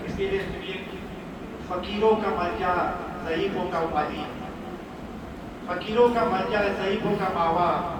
اس کے لیے فقیروں کا ملجا، ضعیفوں کا والی، فقیروں کا ملجا، ضعیفوں کا ماوا،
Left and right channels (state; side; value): identical; both; correlation 1.00